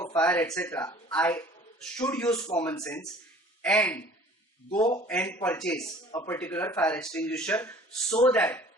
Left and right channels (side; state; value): both; normal; correlation 0.49